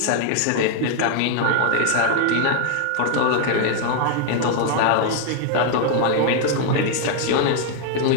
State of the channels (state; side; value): different; both; correlation 0.00